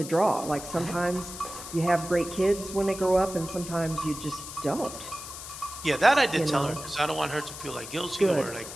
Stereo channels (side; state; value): left; noise; hiss, 11 dB below the sound